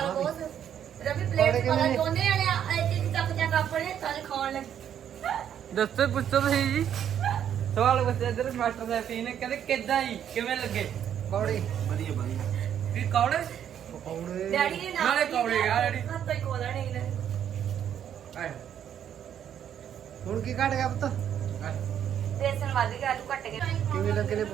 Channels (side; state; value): left; quieter; 9.5 dB